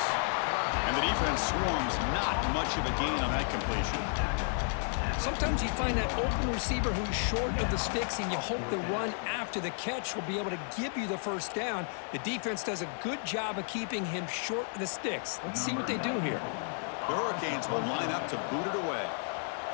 And the defense swarms, not much of a gain on that completion. Sometimes you find that open receiver who's short of the sticks, and you hope the run after the catch will be able to give you the first down. The defense does a good job of keeping him short of the sticks. Let's see what they do here. The Hurricanes will line up to boot it away.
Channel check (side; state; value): right; silent; 56 dB below the other